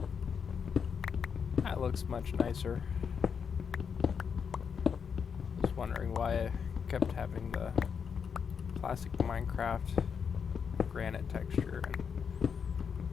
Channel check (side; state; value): right; quieter; 6.6 dB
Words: That looks much nicer. I was wondering why I kept having the classic Minecraft granite texture, and